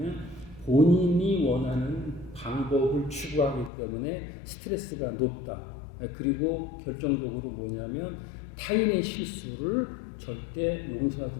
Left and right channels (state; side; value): drops out; right; at 3.7 s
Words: 본인이 원하는 방법을 추구하기 때문에 스트레스가 높다. 그리고 결정적으로 뭐냐면 타인의 실수를 절대 용서하지